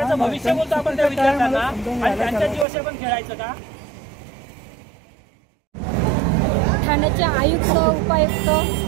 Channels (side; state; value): left; drops out; at 2.7 s